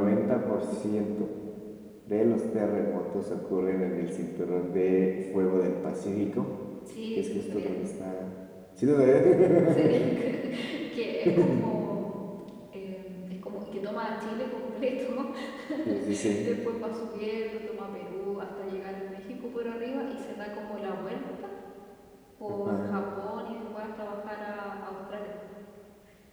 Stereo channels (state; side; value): identical; both; correlation 1.00